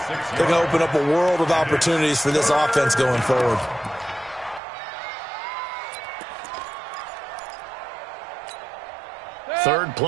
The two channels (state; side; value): drops out; left; at 4.6 s